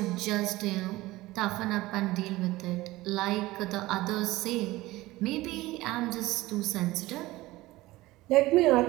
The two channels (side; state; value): left; quieter; 18.7 dB